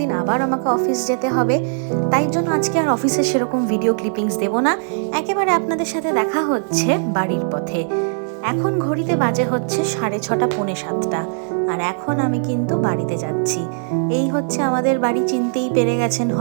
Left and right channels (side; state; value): left; silent; digital silence